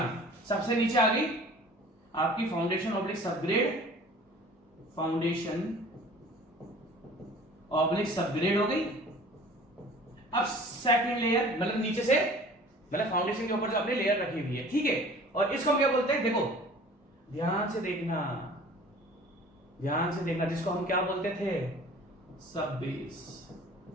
सबसे नीचे आ गई आपकी foundation oblique subgrade, foundation oblique subgrade हो गई। अब सेकंड लेयर, मतलब नीचे से, मतलब फाउंडेशन के ऊपर जो आपने लेयर रखी हुई है, ठीक है, और इसको हम क्या बोलते हैं, देखो ध्यान से देखना, ध्यान से देखना, जिसको हम क्या बोलते थे, सब बेस।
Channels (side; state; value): both; normal; correlation 0.46